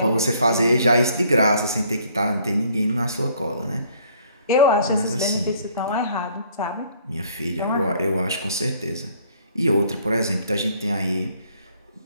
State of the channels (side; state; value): both; inverted; correlation -0.61